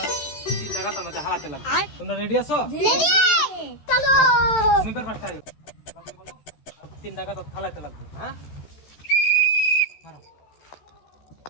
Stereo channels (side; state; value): right; late; 13 ms